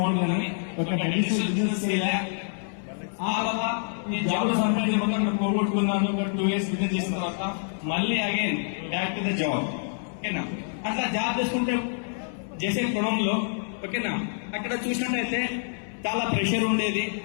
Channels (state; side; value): silent; right; 60 dB below the other